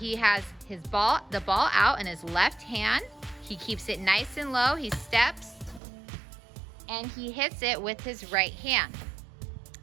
has the ball out in his left hand. He keeps it nice and low. He steps and he hits it with his right hand.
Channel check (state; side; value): drops out; left; at 5.8 s